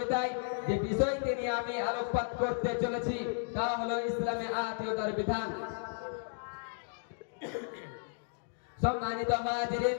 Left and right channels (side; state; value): right; silent; digital silence